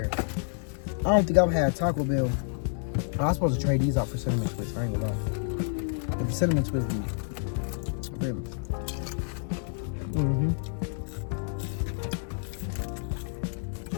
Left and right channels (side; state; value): right; silent; digital silence